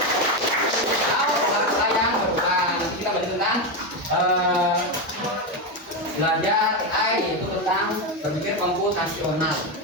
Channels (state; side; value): normal; both; correlation 0.10